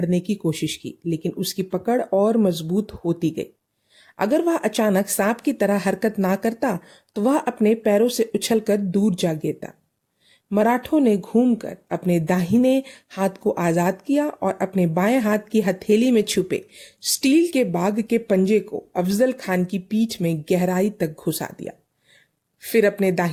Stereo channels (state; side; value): identical; both; correlation 1.00